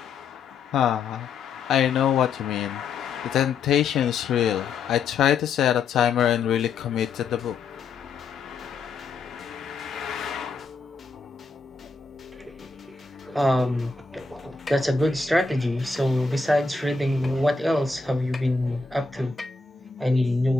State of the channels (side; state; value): right; quieter; 4.5 dB